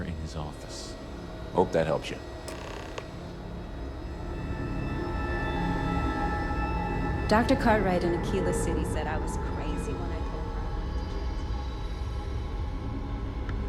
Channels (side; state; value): both; identical; correlation 1.00